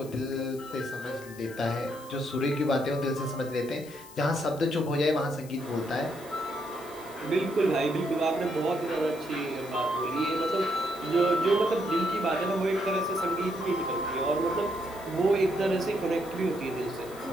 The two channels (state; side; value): noise; left; hiss, 20 dB below the sound